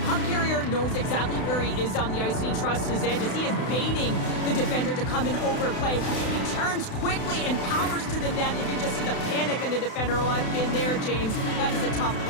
puck carrier knows exactly where he is on the ice, and he trusts his edges. He is baiting the defender to come and overplay. He turns quickly and powers to the net. You can just see the panic in the defender. Oh, I've been there, James. That is a tough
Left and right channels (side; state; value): right; late; 32 ms